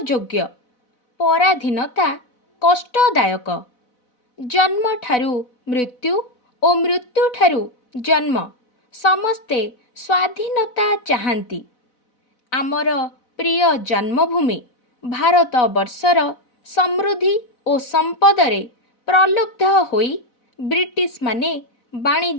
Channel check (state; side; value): late; right; 4.0 ms